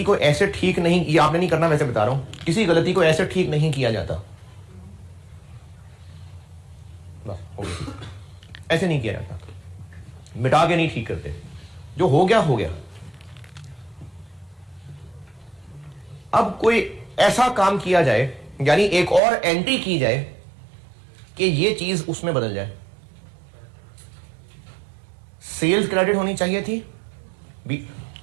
को ऐसे ठीक नहीं, ये आपने नहीं करना, वैसे बता रहा हूं, किसी गलती को ऐसे ठीक नहीं किया जाता। बस हो गया, ऐसे नहीं किया जाता, मिटा के नहीं ठीक करते, जो हो गया हो गया। अब कोई ऐसा काम किया जाए, यानी एक और एंट्री की जाए कि ये चीज उसमें बदल जाए। सेल्स क्रेडिट होनी चाहिए थी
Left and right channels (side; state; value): left; drops out; at 19.2 s